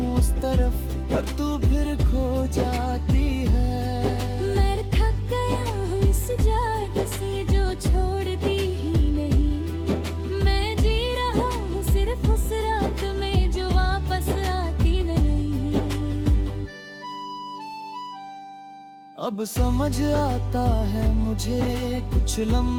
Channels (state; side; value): identical; both; correlation 1.00